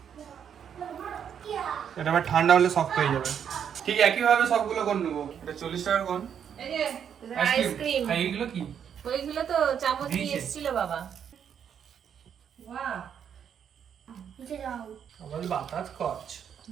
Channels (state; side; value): quieter; left; 8.2 dB